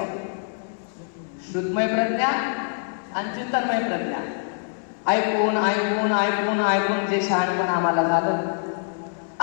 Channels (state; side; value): silent; right; 62 dB below the other